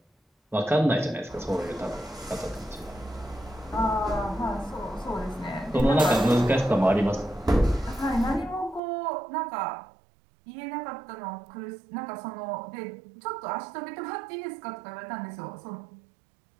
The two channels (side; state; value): left; drops out; at 8.8 s